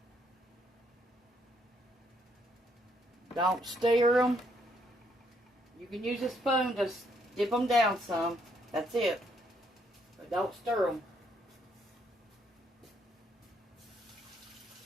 Don't stir them. You can use a spoon to dip them down some. That's it. But don't stir them.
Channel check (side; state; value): both; normal; correlation 0.72